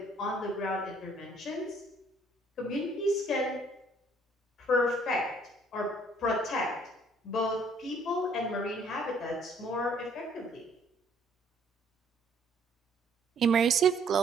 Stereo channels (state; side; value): normal; both; correlation 0.62